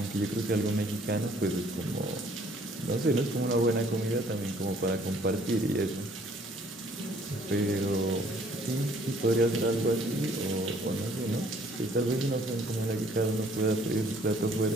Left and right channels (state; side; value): normal; both; correlation 0.60